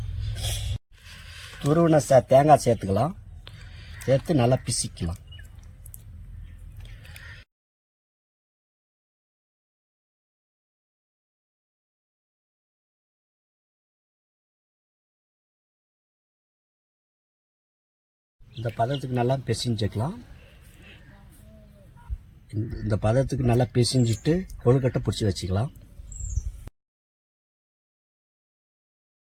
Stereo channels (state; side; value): identical; both; correlation 1.00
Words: துருவின தேங்காய் சேர்த்துக்கலாம். சேர்த்து நல்லா பிசிக்கலாம். இந்த பதத்துக்கு நல்லா பிசைஞ்சுக்கலாம். இந்த பதத்துக்கு நல்லா பிசைஞ்சிட்டு கொழுக்கட்டை பிடிச்சி வச்சுக்கலாம்.